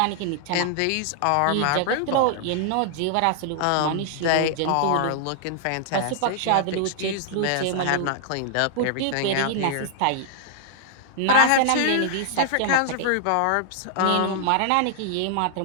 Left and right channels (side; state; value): both; different; correlation -0.01